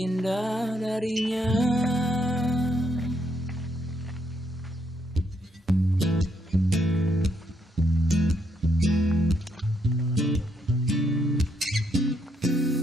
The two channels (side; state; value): both; normal; correlation 0.75